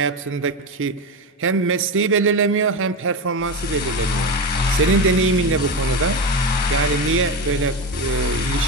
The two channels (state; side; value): normal; both; correlation 0.18